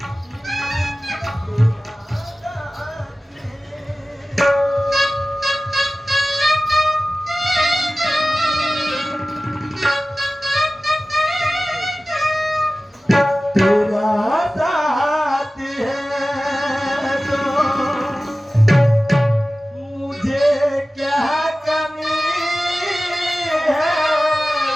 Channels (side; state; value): both; normal; correlation 0.96